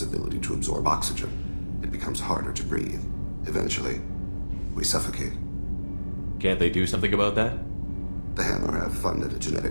ability to absorb oxygen. It becomes harder to breathe. Eventually, we suffocate. Can't they do something about that? The Hanar have funded a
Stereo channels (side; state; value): both; inverted; correlation -1.00